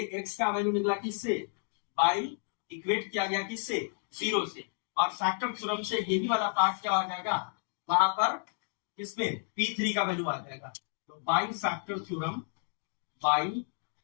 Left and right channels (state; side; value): silent; right; 57 dB below the other